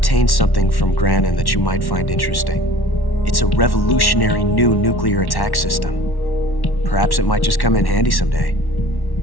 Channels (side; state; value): right; late; 1.1 ms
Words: something from Granin that you might find interesting. It's a revolutionary new nuclear attack system. Perhaps it might just come in handy someday.